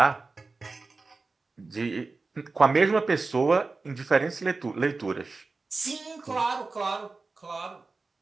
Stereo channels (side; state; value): left; quieter; 3.8 dB